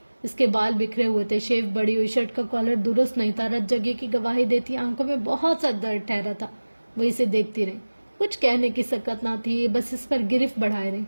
اس کے بال بکھرے ہوئے تھے، شیو بڑی ہوئی، شرٹ کا کالر درست نہیں تھا، رت جگہ کی گواہی دیتی آنکھوں میں بہت سا درد ٹھہرا تھا۔ وہ اسے دیکھتی رہی، کچھ کہنے کی سکت نہ تھی، بس اس پر گرفت بڑھائے رہی۔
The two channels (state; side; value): inverted; both; correlation -1.00